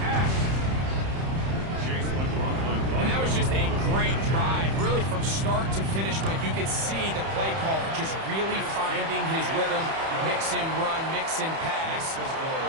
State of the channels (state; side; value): late; left; 31 ms